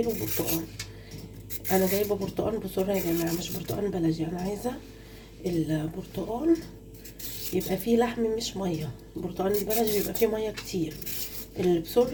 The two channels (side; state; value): both; identical; correlation 1.00